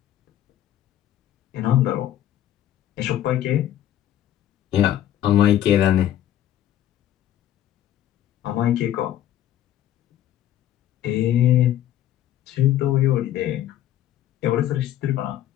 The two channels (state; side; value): quieter; right; 12.1 dB